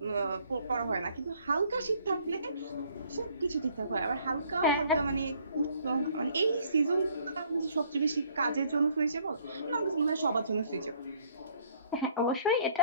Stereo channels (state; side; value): inverted; both; correlation -0.61